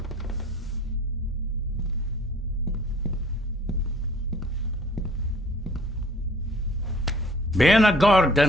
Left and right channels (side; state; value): left; noise; hum, 20 dB below the sound